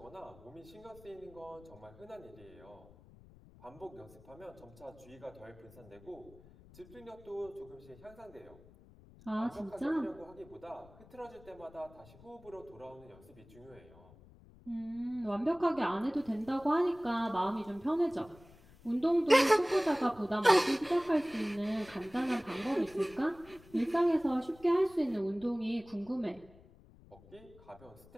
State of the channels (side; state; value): left; noise; rumble, 23 dB below the sound